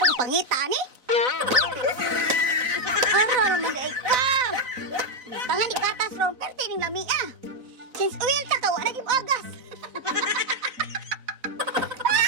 pangita ni. Aram, day ka! Tangan ni gatas ron, pero tining lami ah. Since oil ta ka, wala naging agas.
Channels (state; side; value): late; left; 4.0 ms